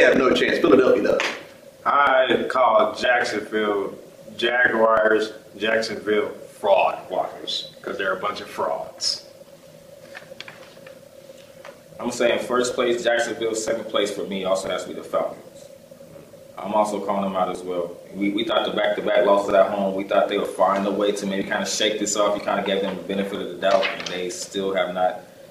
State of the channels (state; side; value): identical; both; correlation 1.00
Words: have no chance. Philadelphia does. I call Jacksonville Jaguars, Jacksonville fraud walkers, because they're a bunch of frauds. I'm saying first place, Jacksonville. Second place for me also has to be the Falcons. I'm also calling them out as well. We thought the back-to-back losses at home, we thought they would find a way to maybe kind of shake this off. You kind of gave them the benefit of the doubt, and they still have not